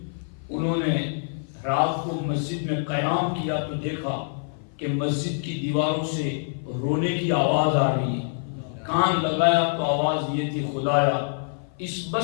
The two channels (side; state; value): right; silent; 55 dB below the other